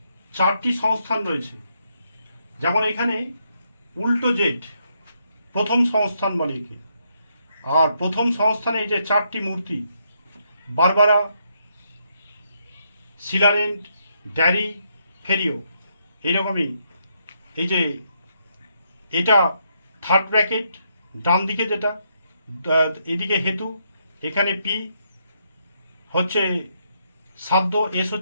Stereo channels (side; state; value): both; inverted; correlation -0.77